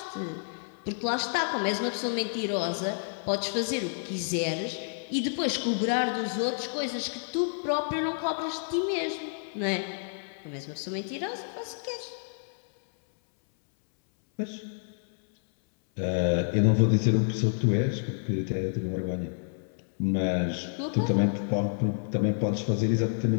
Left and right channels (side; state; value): right; silent; 59 dB below the other